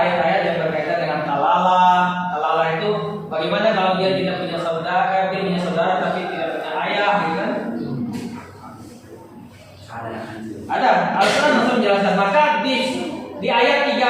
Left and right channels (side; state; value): both; identical; correlation 1.00